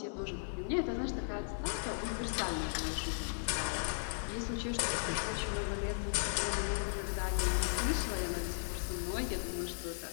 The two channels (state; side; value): silent; right; digital silence